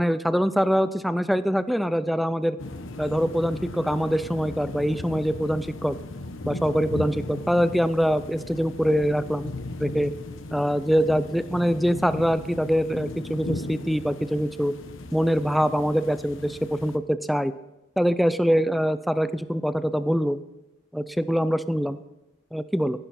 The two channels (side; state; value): both; normal; correlation 0.96